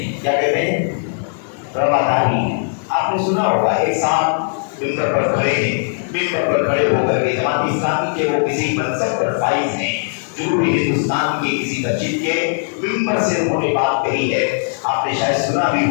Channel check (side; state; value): right; silent; digital silence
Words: کیا کہتے ہیں؟ رواداری. آپ نے سنا ہوگا ایک ساتھ ممبر پر کھڑے ہیں, ممبر پر کھڑے ہو کر کے جماعت اسلامی کے وہ کسی منصب پر فائز ہیں, جنوبی ہندوستان کے کسی مسجد کے ممبر سے انہوں نے بات کہی ہے. آپ نے شاید سنا بھی